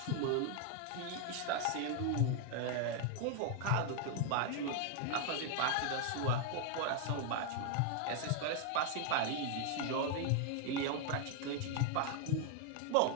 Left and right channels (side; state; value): both; different; correlation 0.00